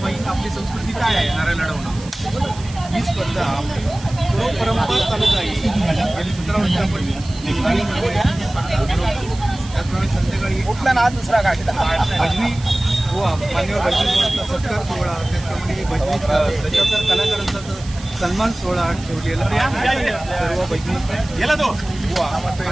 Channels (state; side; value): noise; right; hiss, 17 dB below the sound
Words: आपली संस्कृती काय आहे नारळ लढवणं ही स्पर्धा परंपरा चालू आहे. गेली 17 वर्षापूर्वी त्याचप्रमाणे संध्याकाळी कुठला ना दुसरा काय भजनी मान्यवर भजनी सत्कार सोहळा, त्याचप्रमाणे भजनी त्याच्यावर कलाकारांचा सन्मान सोहळा ठेवलेला सर्व भजनी गेला तो